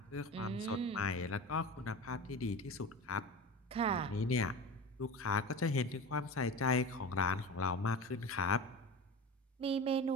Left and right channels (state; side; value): normal; both; correlation 0.29